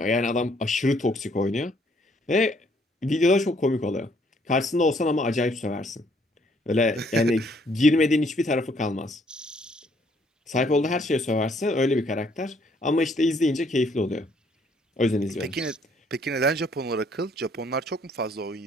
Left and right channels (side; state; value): both; normal; correlation 0.66